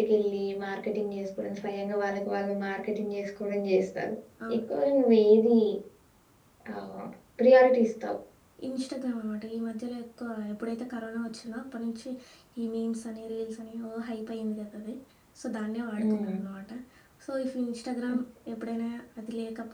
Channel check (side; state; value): both; identical; correlation 1.00